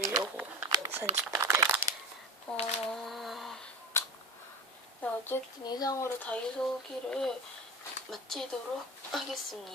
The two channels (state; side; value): normal; both; correlation 0.30